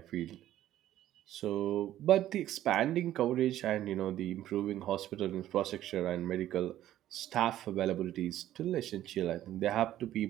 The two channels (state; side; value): quieter; left; 12.9 dB